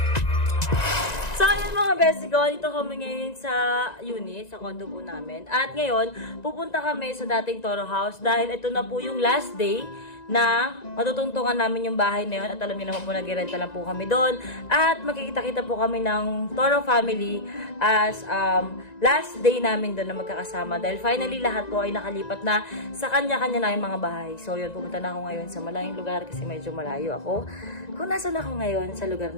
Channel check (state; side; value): late; right; 1.9 ms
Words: So, ayun mga best ko, dito kami ngayon sa unit, sa condo po namin. At ngayon, pupunta kami sa dating Toro House dahil ito na po yung last day na matutungtungan namin yung bahay na yun. At alam niyo naman po, nag-renta lang po kami doon. At makikita-kita po kami ng Toro family as last day namin doon na magkakasama. Dahil finally, lahat po ay nakalipat na sa kanya-kanya na yung mga bahay. So yun, pupunta na ako ngayon sa malayong lugar kasi medyo malayo ako. Kung nasan ako ngayon sa lugar